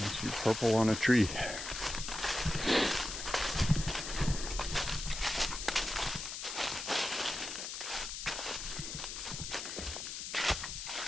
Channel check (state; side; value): noise; left; hiss, 6 dB below the sound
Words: Purple on a tree.